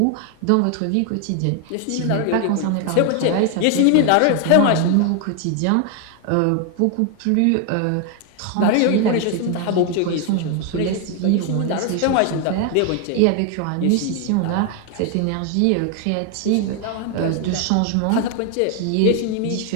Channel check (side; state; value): both; different; correlation 0.00